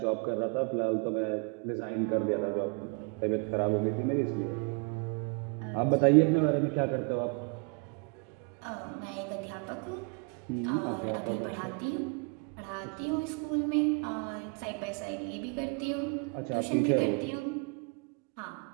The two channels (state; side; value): quieter; left; 35.7 dB